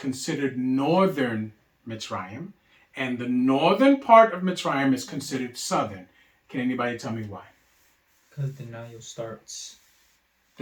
northern Mitzrayim, and the northern part of Mitzrayim is considered southern. Can anybody tell me why? Because the Nile starts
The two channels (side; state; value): both; identical; correlation 1.00